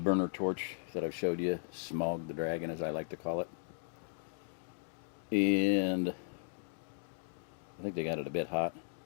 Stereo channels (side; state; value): right; silent; digital silence